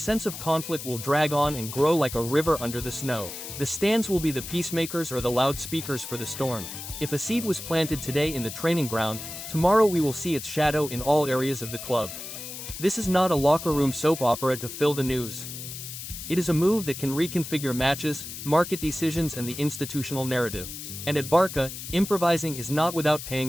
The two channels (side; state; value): left; noise; hiss, 9 dB below the sound